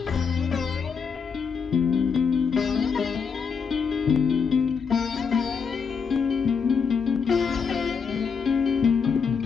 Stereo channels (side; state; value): right; quieter; 5.9 dB